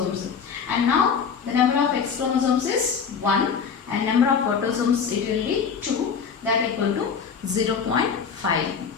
And now the number of X chromosomes is 1 and number of autosomes it will be 2, that equal to 0.5.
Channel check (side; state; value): right; quieter; 6.3 dB